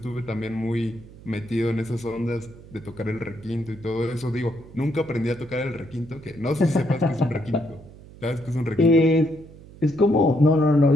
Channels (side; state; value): right; noise; hum, 20 dB below the sound